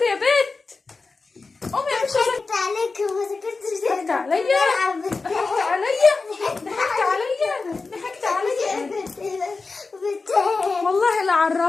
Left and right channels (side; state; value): right; quieter; 4.0 dB